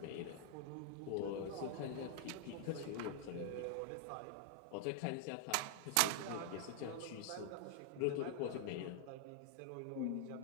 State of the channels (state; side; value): different; both; correlation 0.00